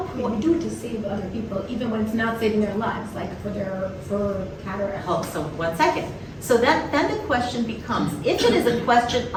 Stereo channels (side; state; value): both; identical; correlation 1.00